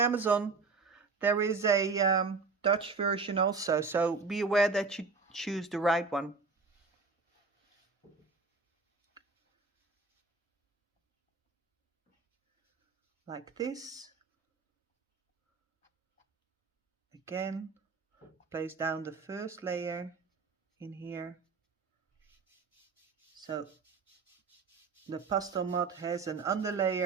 there is a Dutch version also, so be aware that you choose the right one. Like this. Again, place down the first layer in here. So the Pastelmat has an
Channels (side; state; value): left; quieter; 4.4 dB